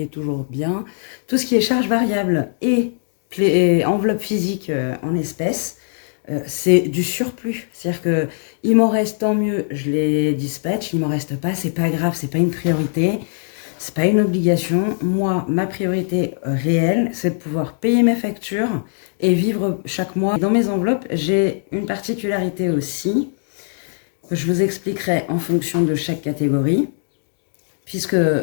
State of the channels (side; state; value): right; silent; digital silence